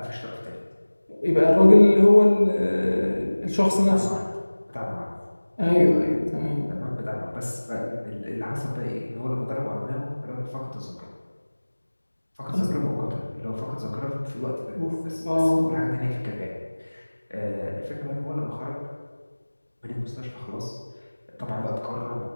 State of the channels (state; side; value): inverted; both; correlation -1.00